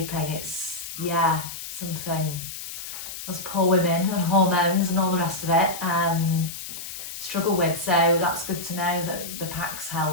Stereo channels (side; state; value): left; noise; hiss, 9 dB below the sound